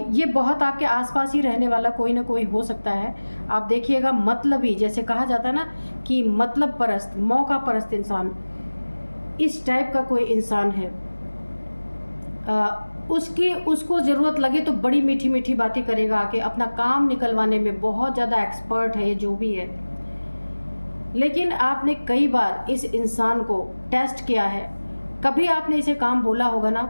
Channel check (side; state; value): both; inverted; correlation -1.00